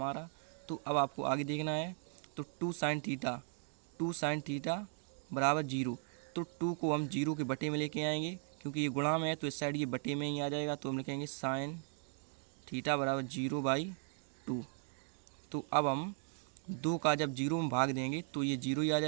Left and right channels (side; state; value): left; silent; 53 dB below the other